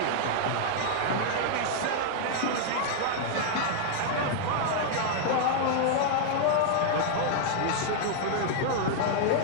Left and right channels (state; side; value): different; both; correlation -0.01